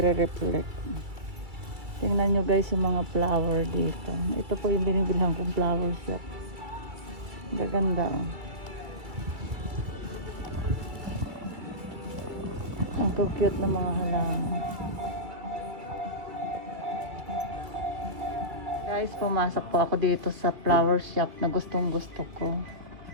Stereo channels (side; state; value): left; late; 2.3 ms